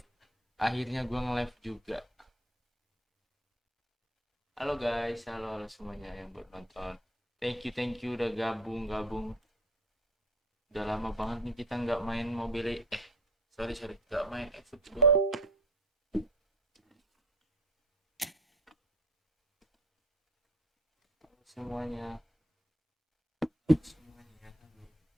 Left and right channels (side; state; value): both; normal; correlation 0.46